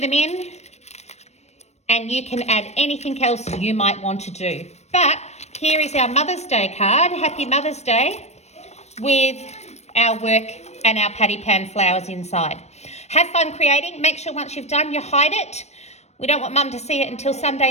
in. And you can add anything else you might want to do. But here is our Mother's Day card. Happy Mother's Day, with our work and our patty pan flowers inside. Have fun creating. Make sure once you've done, you hide it. We don't want Mum to see it until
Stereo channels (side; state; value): right; late; 0.32 ms